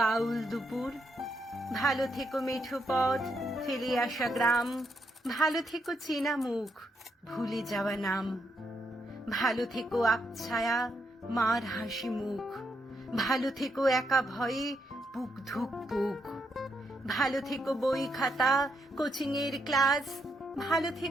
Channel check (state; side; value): normal; both; correlation 0.79